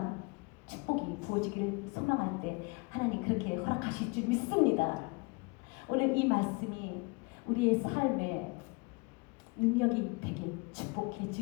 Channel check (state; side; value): quieter; right; 29.6 dB